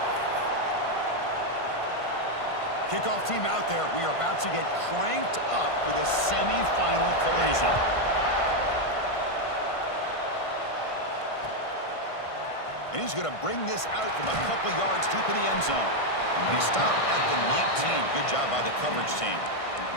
Kickoff team out there. We are about to get cranked up with a semifinal collision. And he's going to bring this out from a couple yards deep in the end zone. And he stopped at the 19. Good job by the coverage team.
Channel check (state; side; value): late; right; 1.5 ms